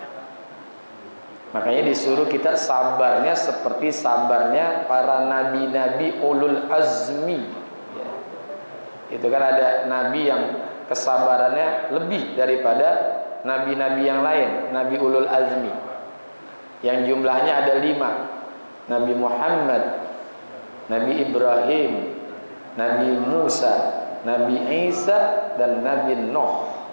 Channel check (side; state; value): both; inverted; correlation -1.00